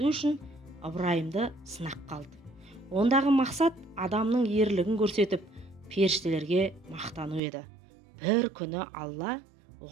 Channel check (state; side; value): drops out; left; at 7.4 s